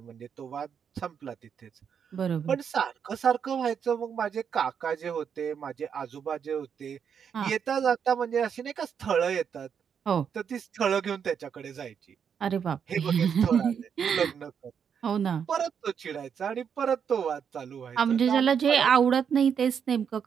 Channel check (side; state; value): left; quieter; 7.4 dB